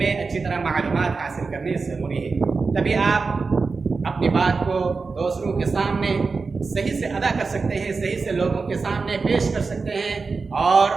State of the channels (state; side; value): quieter; left; 4.4 dB